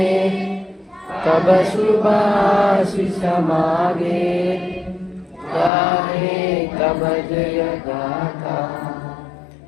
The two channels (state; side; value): drops out; right; at 5.7 s